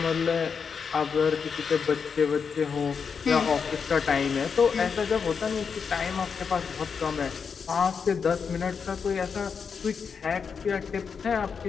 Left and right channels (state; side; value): quieter; right; 6.1 dB